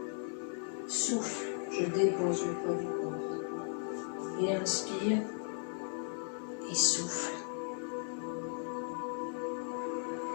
Souffle, je dépose le poids du corps. Et inspire. Et souffle.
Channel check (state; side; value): silent; right; 53 dB below the other